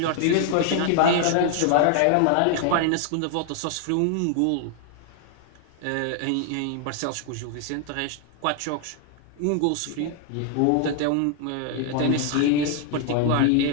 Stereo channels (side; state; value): both; different; correlation 0.00